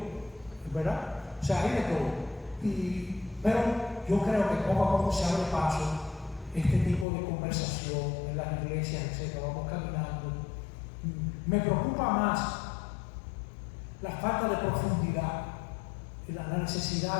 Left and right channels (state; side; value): drops out; right; at 7.1 s